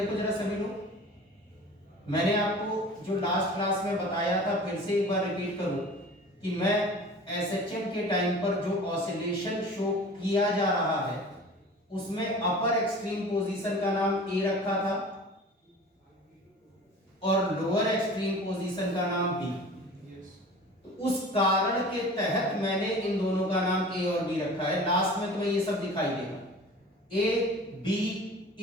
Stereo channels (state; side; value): normal; both; correlation 0.41